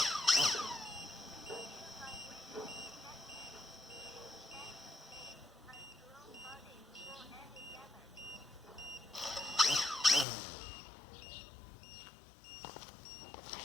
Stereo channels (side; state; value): right; drops out; at 10.2 s